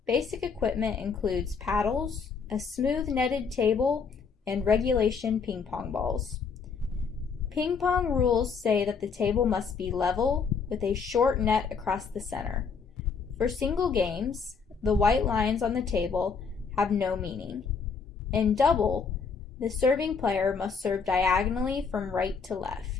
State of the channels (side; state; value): right; quieter; 5.5 dB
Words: Basic equipment includes paddles, a smooth netted table, and regulation ping pong balls. Ping pong rules say that the table must be level with a short net across the center. For single games, the white lines on the table have no meaning. In double, the serving player must serve diagonally from right to